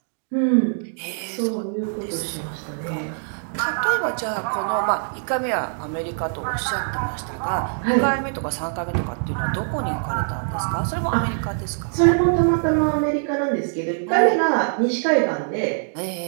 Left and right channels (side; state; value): left; silent; digital silence